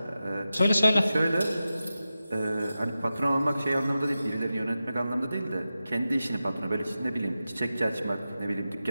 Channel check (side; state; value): both; inverted; correlation -0.93